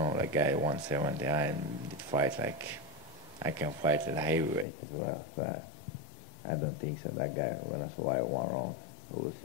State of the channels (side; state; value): right; drops out; at 4.7 s